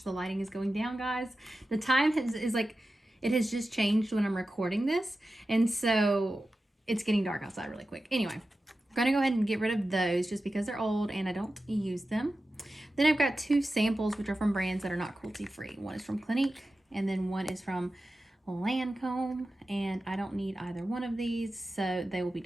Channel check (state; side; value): normal; both; correlation 0.93